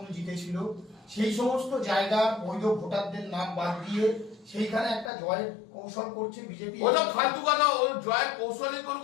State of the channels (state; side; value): drops out; right; at 5.1 s